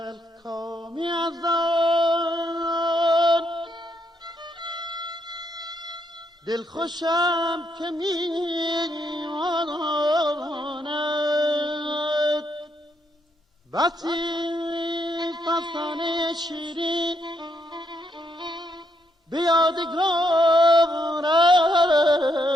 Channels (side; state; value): both; normal; correlation 0.77